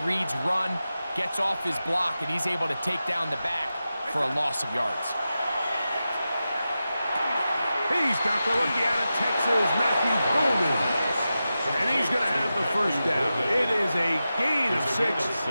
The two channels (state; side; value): inverted; both; correlation -0.92